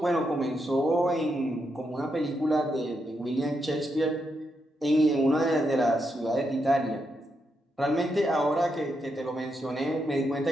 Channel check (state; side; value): normal; both; correlation 0.82